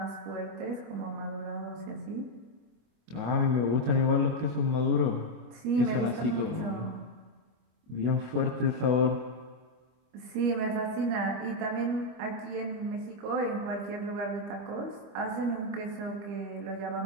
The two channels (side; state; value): left; late; 25 ms